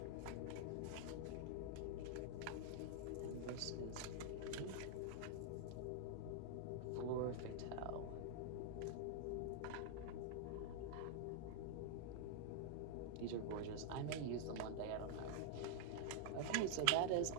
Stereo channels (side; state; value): both; different; correlation -0.01